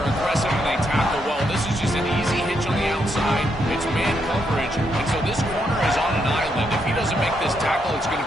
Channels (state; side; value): normal; both; correlation 0.78